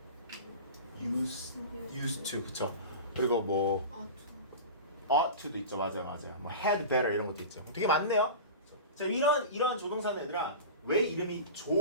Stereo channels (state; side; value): inverted; both; correlation -0.32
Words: used to, 그쵸? 그리고 뭐 ought to도 있죠. 맞아요. 뭐 had better 이런 것도 있죠. 되게 많네요. 자, 이런 조동사는 얘들아 왜 이름이